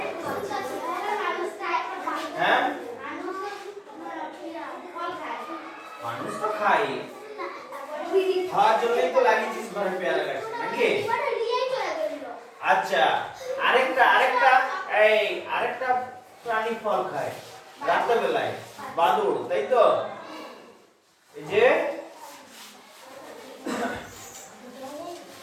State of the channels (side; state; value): both; identical; correlation 1.00